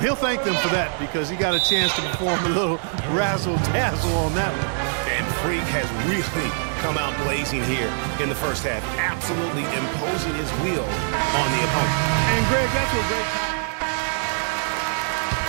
He'll thank them for that because he got a chance to perform a little razzle-dazzle on that one. And Freak has really come out blazing here in the first half, absolutely imposing his will on the opponent. And Greg, that's what great.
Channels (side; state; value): left; silent; digital silence